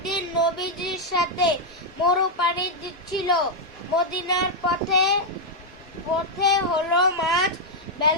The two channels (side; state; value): both; normal; correlation -0.02